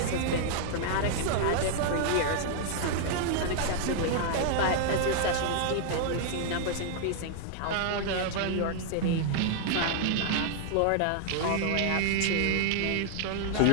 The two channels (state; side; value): different; both; correlation 0.00